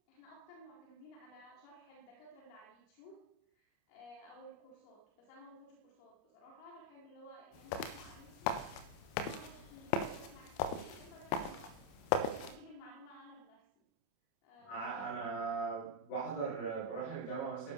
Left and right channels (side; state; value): right; late; 29 ms